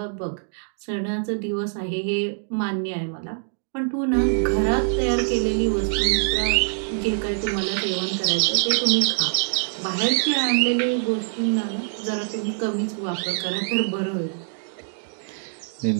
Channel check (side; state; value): left; silent; digital silence